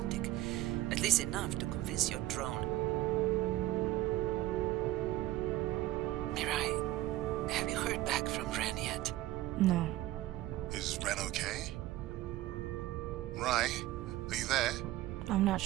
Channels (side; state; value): left; quieter; 16.1 dB